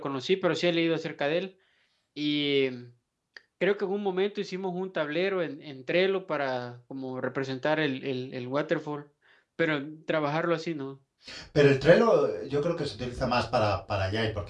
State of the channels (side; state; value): both; identical; correlation 1.00